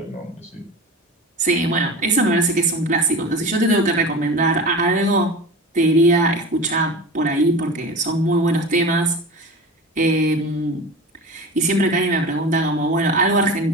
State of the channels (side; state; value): both; normal; correlation 0.32